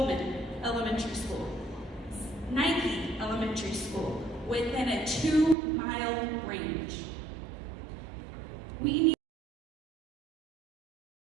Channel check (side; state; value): left; drops out; at 5.6 s